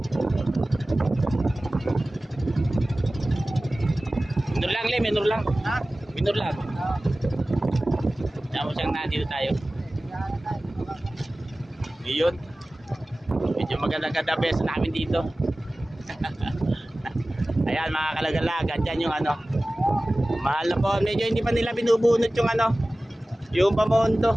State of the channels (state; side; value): normal; both; correlation 0.97